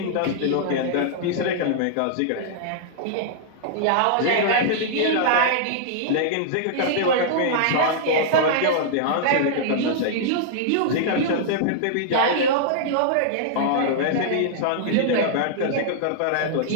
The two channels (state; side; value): different; both; correlation -0.02